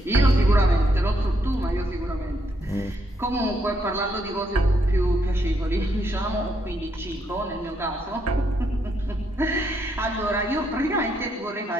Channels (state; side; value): normal; both; correlation 0.76